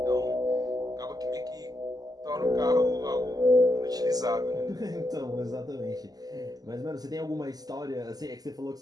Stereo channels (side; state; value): left; late; 0.18 ms